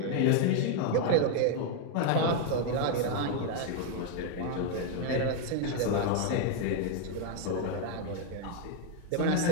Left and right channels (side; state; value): both; different; correlation 0.00